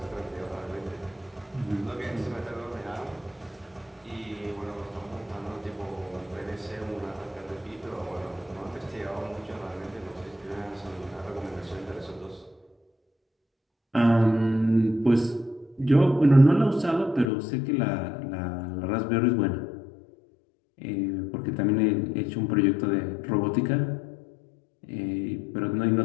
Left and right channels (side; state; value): right; drops out; at 17.3 s